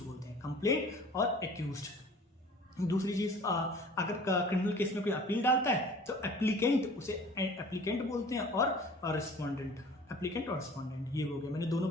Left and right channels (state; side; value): normal; both; correlation 0.46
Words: बोलते हैं। कंप्लेंट और एक्यूज्ड। दूसरी चीज, अगर क्रिमिनल केस में कोई अपील डालता है तो एप्लीकेंट, उसे एप्लीकेंट बोलते हैं, और रिस्पोंडेंट, एप्लीकेंट और रिस्पोंडेंट, ये हो गया। मैंने दोनों